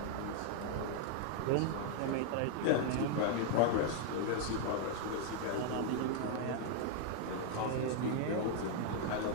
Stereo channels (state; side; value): different; both; correlation 0.00